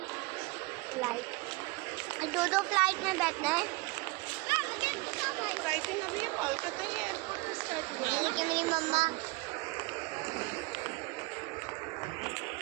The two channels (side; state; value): left; quieter; 24.4 dB